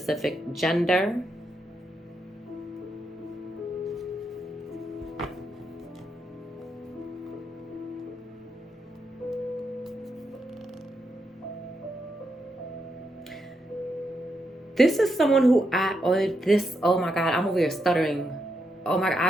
gender. This is someone who oh my God, I'm over here stuttering. Oh my God,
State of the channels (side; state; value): both; normal; correlation 0.82